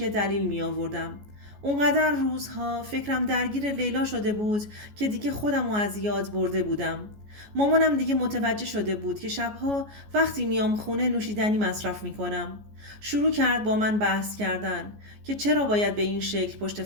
دلیل می آوردم. اونقدر روزها فکرم درگیر لیلا شده بود که دیگه خودمو از یاد برده بودم. مامانم دیگه متوجه شده بود که شبها وقتی میام خونه نوشیدنی مصرف میکنم. شروع کرد با من بحث کردن که چرا باید به این شکل پشت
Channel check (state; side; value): late; left; 14 ms